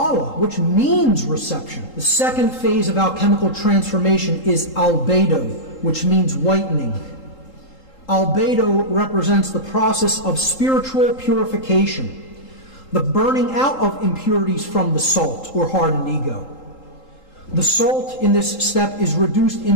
which means reception. The second phase of alchemical transformation is albedo, which means whitening. Albedo represents the process of spiritual purification, the burning out of impurities from the salt or hardened ego. The salt in this step is reduced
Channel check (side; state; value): right; late; 3.8 ms